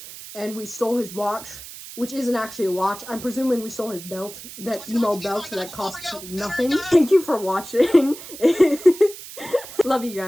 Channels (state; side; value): noise; right; hiss, 14 dB below the sound